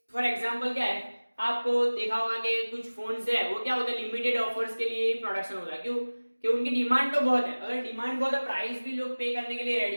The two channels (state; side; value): inverted; both; correlation -1.00